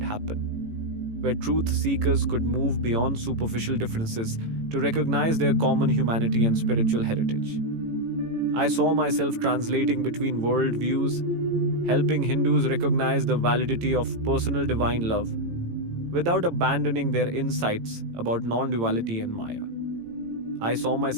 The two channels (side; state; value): left; late; 18 ms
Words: happen, where truth seekers could move beyond superficial differences to recognize their common humanity and spiritual heritage. I saw myself translating between worldviews, helping Hindus recognize the validity of personal divine love without abandoning their insights about non-duality and Maya. I saw